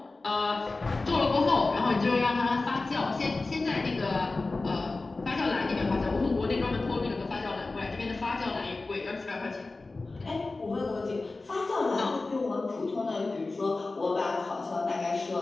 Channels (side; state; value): right; quieter; 3.4 dB